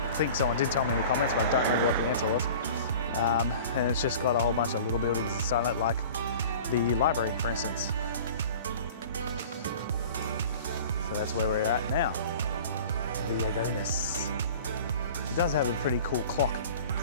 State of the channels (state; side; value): inverted; both; correlation -0.42